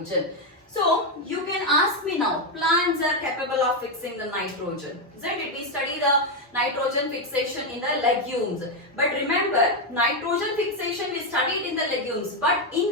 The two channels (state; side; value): normal; both; correlation 0.05